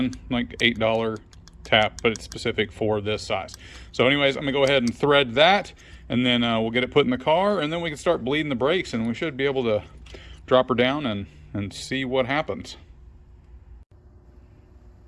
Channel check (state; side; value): identical; both; correlation 1.00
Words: like $8 tap, but it's specific for this size. So anyways, I'm gonna go ahead and thread that, and then we'll get it put in the car, and then we can start bleeding the brakes, and we should be able to drop her down and see what happens.